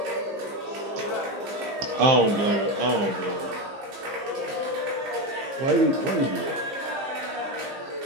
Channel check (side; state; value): left; late; 15 ms